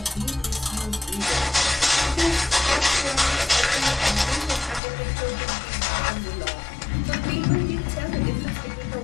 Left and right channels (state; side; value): drops out; right; at 4.8 s